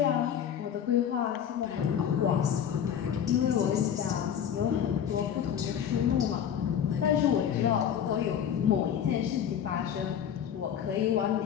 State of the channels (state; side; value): quieter; right; 9.0 dB